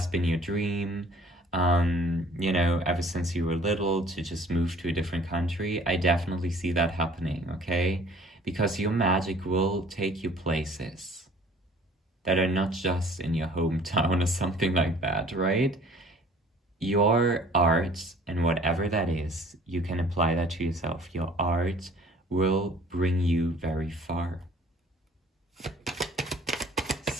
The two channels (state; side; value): normal; both; correlation 0.52